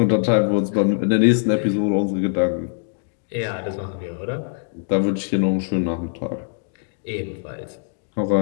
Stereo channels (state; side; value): silent; right; digital silence